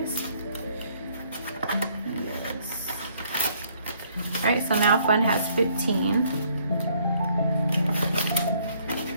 right, so now fund has 15.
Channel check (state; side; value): inverted; both; correlation -0.65